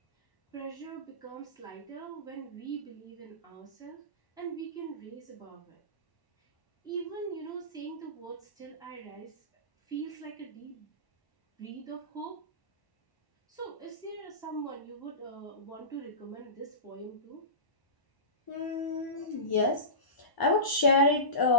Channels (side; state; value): right; late; 1.0 ms